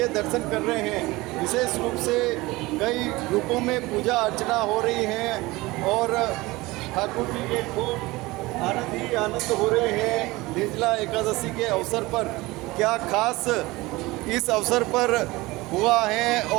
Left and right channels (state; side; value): quieter; left; 20.9 dB